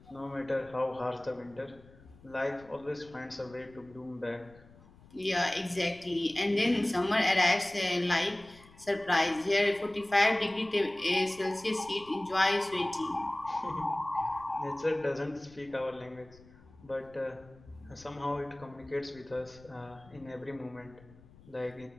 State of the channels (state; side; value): noise; left; rumble, 24 dB below the sound